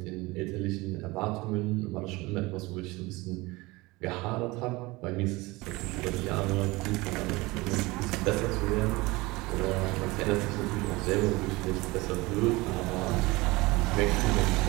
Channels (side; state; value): left; quieter; 22.3 dB